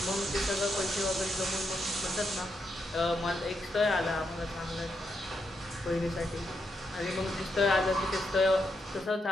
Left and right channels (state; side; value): normal; both; correlation 0.82